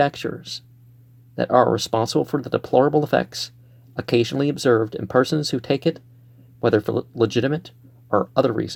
that are responsible for the deplorable effects occasionally observed in persons who take it, whether for legitimate or other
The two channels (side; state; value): both; identical; correlation 1.00